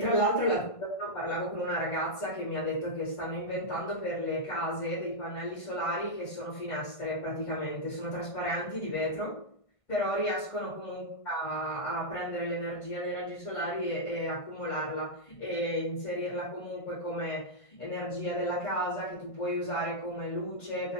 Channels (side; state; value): right; late; 1.5 ms